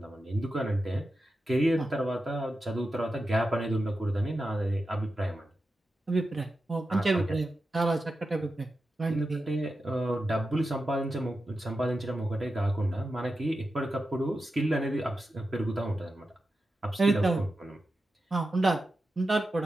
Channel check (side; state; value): both; normal; correlation 0.90